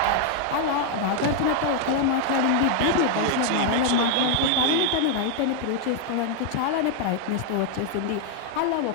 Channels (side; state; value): both; different; correlation 0.00